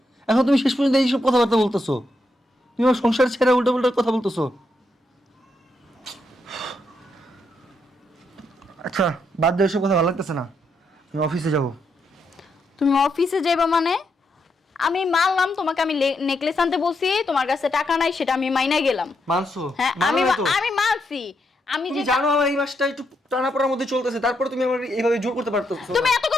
এখন তুমি শেষ পর্যন্ত এইসব কথাবার্তা বলতেছো। তুমি আমার সংসার ছেড়ে উল্টো উল্টো কথা বলতেছো। আচ্ছা, বাদ দাও, এসব কথা ভালো লাগতেছে না। আমি অফিসে যাবো। তুমি অফিসে যাইবা মানে? আমি মানলাম তোমাকে, আমি নেকলেস আনতে বলছি, তোমার কাছে টাকা নাই সেটা আমি মাইনা গেলাম। মানছো? হ্যাঁ, মানো আমি না তো? আমি মানছি। আমি তুমি যে জানো আমার এই মাসটা একটু টানাপোড়ার মধ্যে চলতেছে, তারপরে তুমি আমার এইভাবে জোর করতে পারতেছো তুমি না। এত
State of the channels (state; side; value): normal; both; correlation 0.80